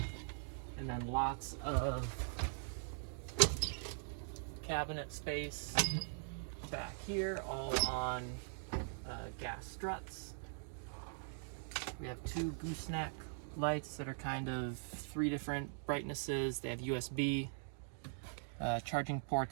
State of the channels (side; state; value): left; silent; digital silence